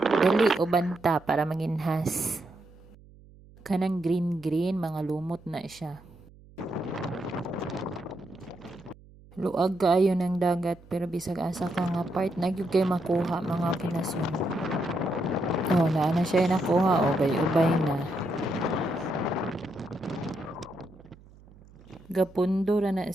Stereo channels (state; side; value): noise; right; hum, 24 dB below the sound